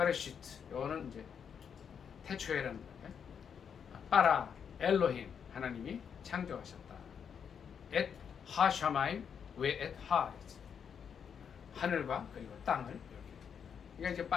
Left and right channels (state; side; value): quieter; right; 7.3 dB